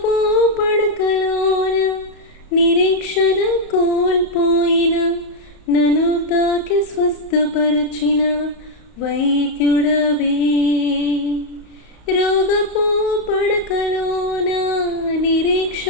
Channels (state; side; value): late; right; 35 ms